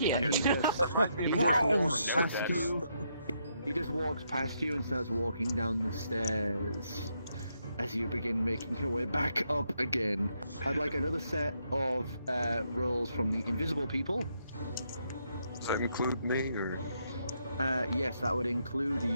And he walks past you. He just walks past you and starts walking down the stairs. As you begin making your way back up again, I'd like another set of rolls from the invisible people. Does that include me, or? Yes, that would include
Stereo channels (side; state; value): both; inverted; correlation -0.77